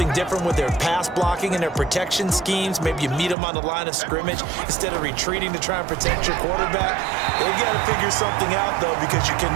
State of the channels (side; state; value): left; drops out; at 3.4 s